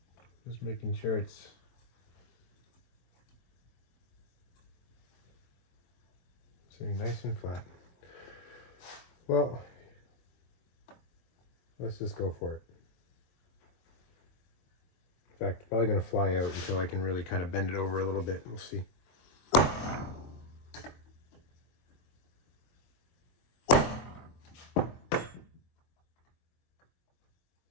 Just making sure it's sitting nice and flat. Well, let's just go for it. In fact, probably going to fly out until I can really kind of bend it over a little bit. We'll see.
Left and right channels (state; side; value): late; right; 22 ms